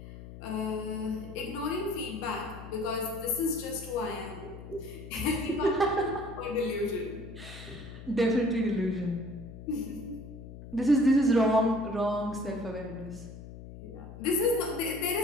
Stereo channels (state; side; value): noise; left; hum, 13 dB below the sound